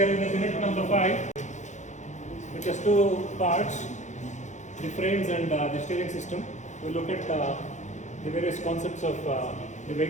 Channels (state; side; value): late; right; 0.35 ms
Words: are in the unit number 5, which has two parts, the frames and the steering system. We'll look at the various concepts of the